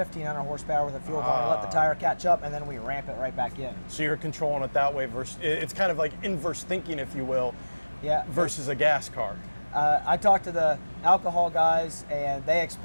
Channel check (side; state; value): both; inverted; correlation -1.00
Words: horsepower with a fuel quantity, let the tire catch up, and then we ramp it right back in. So you're controlling it that way versus, it's kind of like inverse thinking, if you will, yeah, versus a gas car. I talked to the alcohol guys, and they